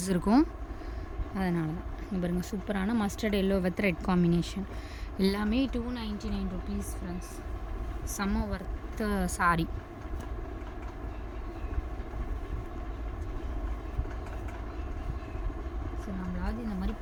இருக்கும், அதனால தான். இங்கே பாருங்கள், சூப்பரான mustard yellow with red combination. எல்லாமே 299 rupees ஃப்ரெண்ட்ஸ். செம்ம ஒர்த்து சாரி. ஸோ நம்மளாவது இந்த மாதிரி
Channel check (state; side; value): identical; both; correlation 1.00